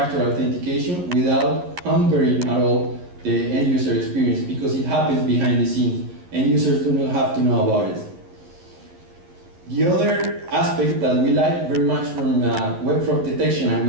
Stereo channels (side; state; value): left; late; 11 ms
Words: authentication without hampering at all the end user experience, because it happens behind the scenes. End users do not have to know about it. The other aspect that we like very much from web fraud detection, and